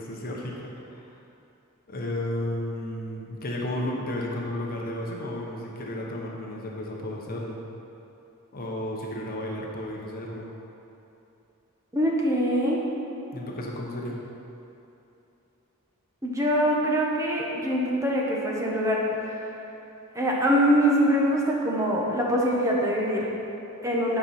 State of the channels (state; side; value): normal; both; correlation 0.38